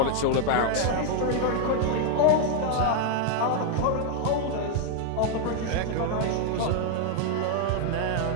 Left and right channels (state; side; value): different; both; correlation 0.00